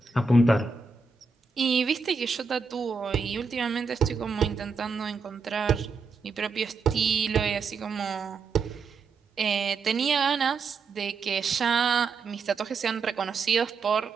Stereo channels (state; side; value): quieter; left; 4.7 dB